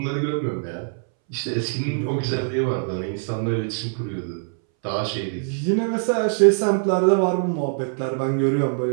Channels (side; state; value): left; silent; 63 dB below the other